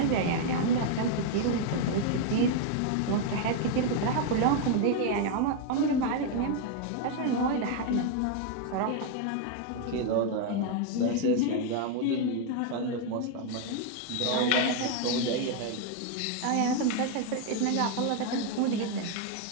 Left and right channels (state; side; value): different; both; correlation 0.00